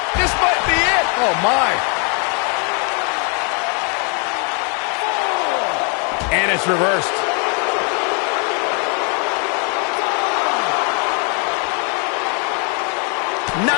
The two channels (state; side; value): quieter; right; 37.8 dB